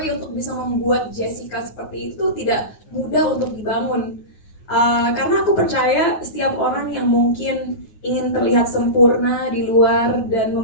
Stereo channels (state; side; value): late; right; 9.4 ms